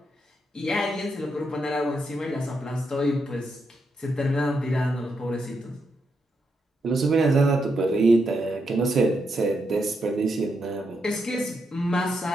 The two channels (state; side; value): normal; both; correlation 0.82